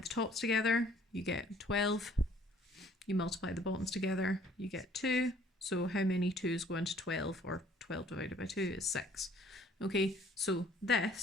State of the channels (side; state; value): both; normal; correlation 0.58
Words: tops together, you get 12. You multiply the bottoms together, you get 2. So how many 2's go into 12, or 12 divided by 2 is 6. Okay, so